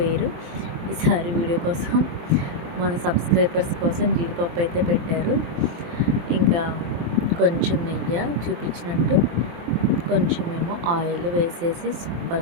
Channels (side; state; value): left; late; 23 ms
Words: వేరు. ఈసారి వీడియో కోసం మన సబ్స్క్రైబర్స్ కోసం జీడిపప్పు అయితే పెట్టారు. ఇంకా కొంచెం నెయ్యి చూపించినట్టు, కొంచెమేమో ఆయిల్ వేసేసి